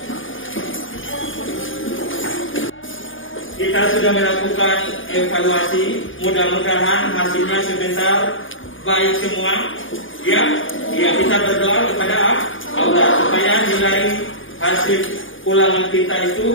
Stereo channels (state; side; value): late; right; 0.58 ms